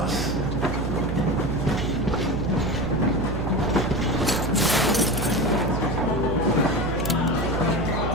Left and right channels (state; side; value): noise; right; hum, 2 dB below the sound